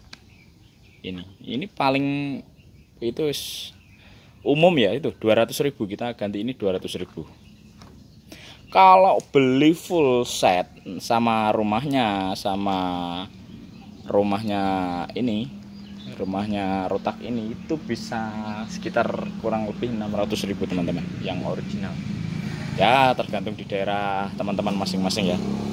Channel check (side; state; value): both; identical; correlation 1.00